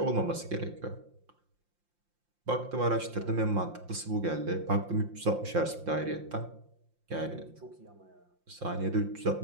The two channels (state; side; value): late; left; 5.7 ms